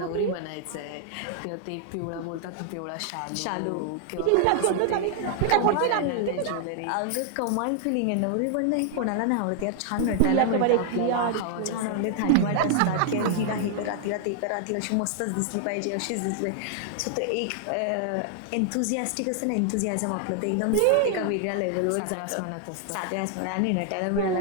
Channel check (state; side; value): different; both; correlation 0.00